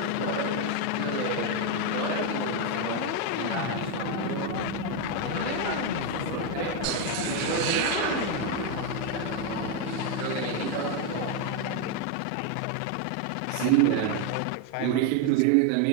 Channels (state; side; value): different; both; correlation 0.02